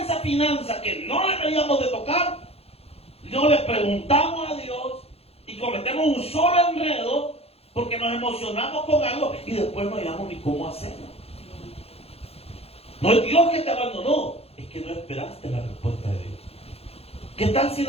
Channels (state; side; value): late; right; 0.29 ms